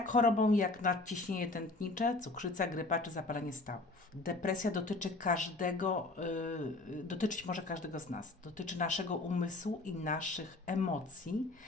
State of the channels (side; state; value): right; quieter; 3.1 dB